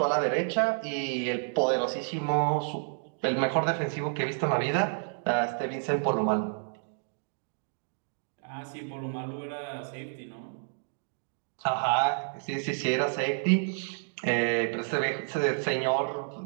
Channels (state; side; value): silent; left; digital silence